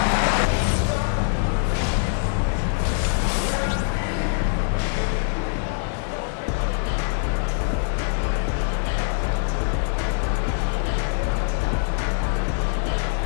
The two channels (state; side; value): silent; right; digital silence